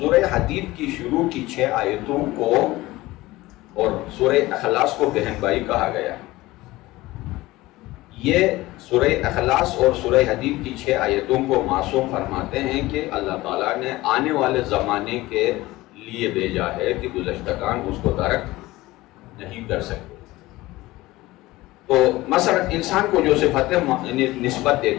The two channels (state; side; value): quieter; right; 18.8 dB